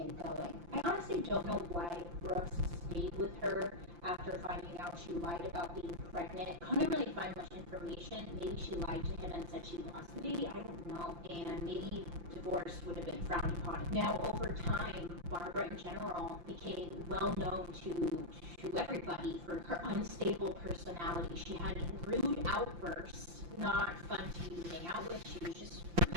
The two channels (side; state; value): left; late; 5.8 ms